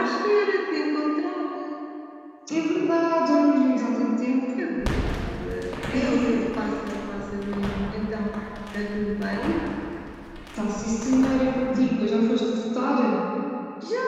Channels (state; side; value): identical; both; correlation 1.00